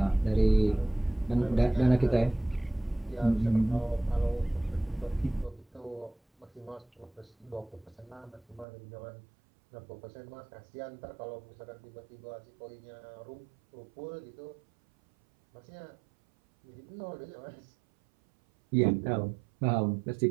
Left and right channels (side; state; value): left; drops out; at 8.7 s